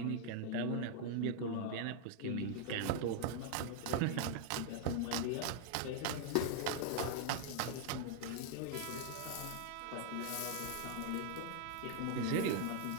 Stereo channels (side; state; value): both; different; correlation 0.00